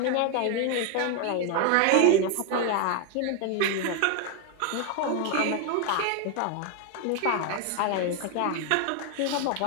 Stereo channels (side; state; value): both; different; correlation 0.01